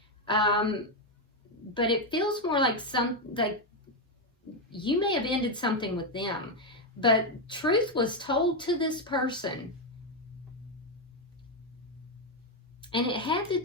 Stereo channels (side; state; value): both; normal; correlation 0.04